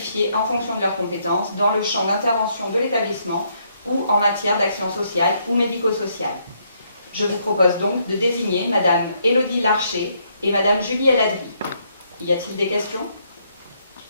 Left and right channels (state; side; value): inverted; both; correlation -0.73